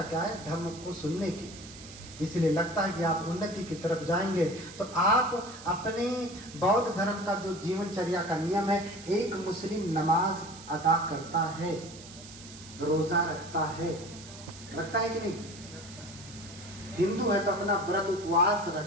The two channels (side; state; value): right; noise; hiss, 16 dB below the sound